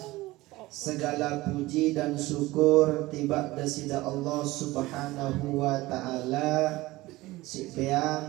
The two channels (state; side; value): quieter; left; 19.1 dB